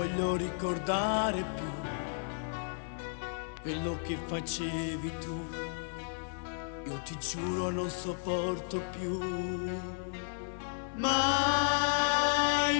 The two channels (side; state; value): right; silent; 56 dB below the other